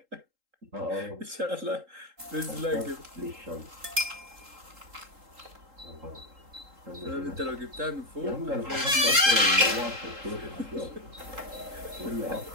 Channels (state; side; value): late; left; 3.8 ms